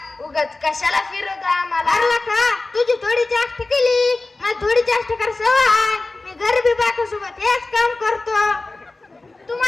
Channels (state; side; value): quieter; right; 3.2 dB